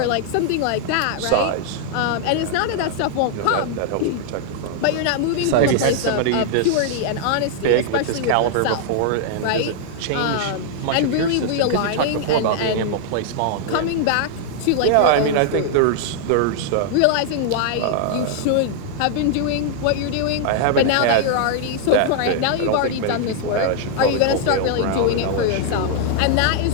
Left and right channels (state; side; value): different; both; correlation -0.01